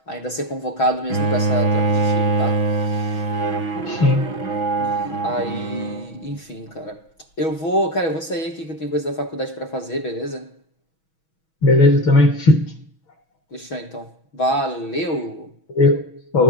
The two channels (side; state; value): right; late; 6.2 ms